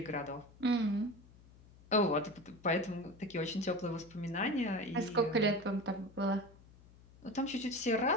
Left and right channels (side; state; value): left; noise; hum, 24 dB below the sound